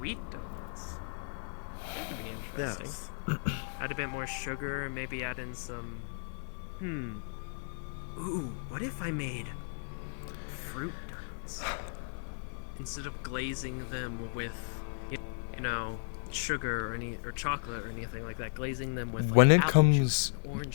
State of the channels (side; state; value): right; silent; digital silence